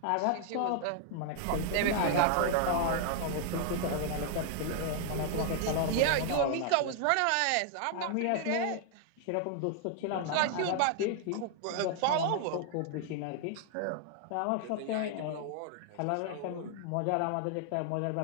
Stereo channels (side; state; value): both; different; correlation 0.00